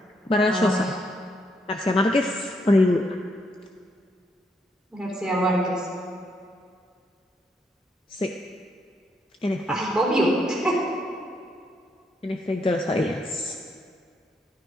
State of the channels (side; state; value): both; normal; correlation 0.75